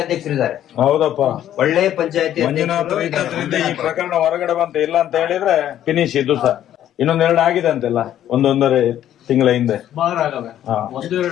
ಅಧ್ಯಕ್ಷರಿದ್ದಾರೆ, ಹೌದಪ್ಪ. ಒಳ್ಳೆ ಪಂಚಾಯತಿ ಮಂಜುನಾಥ್ ಇದ್ದದ್ರಿಂದ ಈ ಪ್ರಕರಣ ಹೊರಗಡೆ ಬಂತ. ಇಲ್ಲ ಅಂತ ಹೇಳಿದ್ರೆ ಫಿನಿಶ್. ಇದು ಸಹ ಇನ್ನೊಂದೆರಡು ಆಗಿದೆ ಅಂತೆಲ್ಲ, ಒಂದೊಂದೂವರೆ ತಿಂಗಳ ಹಿಂದೆ. ಒಂದು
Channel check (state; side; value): quieter; right; 11.4 dB